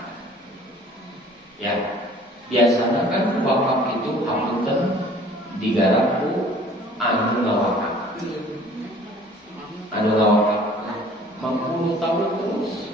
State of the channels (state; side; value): normal; both; correlation 0.51